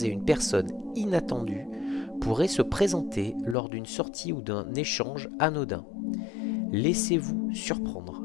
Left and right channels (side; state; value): right; drops out; at 3.6 s